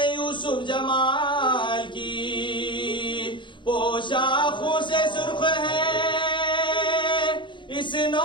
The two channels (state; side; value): late; right; 0.23 ms